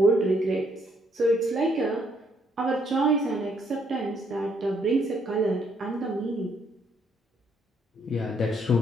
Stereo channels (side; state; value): both; normal; correlation 0.70